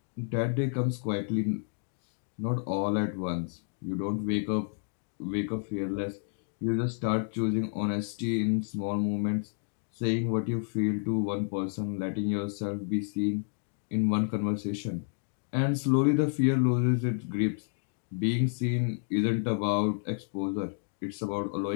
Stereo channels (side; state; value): right; silent; 58 dB below the other